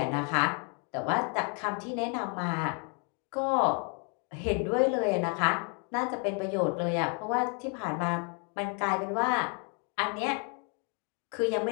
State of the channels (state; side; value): quieter; right; 35.7 dB